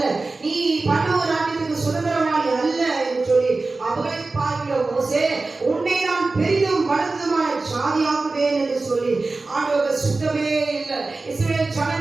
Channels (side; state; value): left; quieter; 3.6 dB